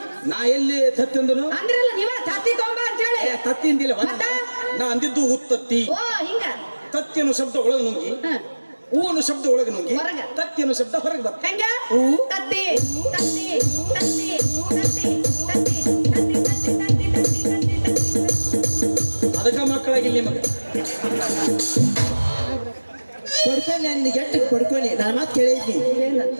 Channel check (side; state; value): both; inverted; correlation -1.00